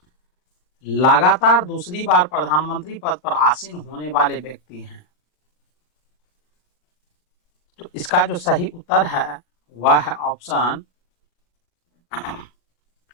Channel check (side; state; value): right; late; 39 ms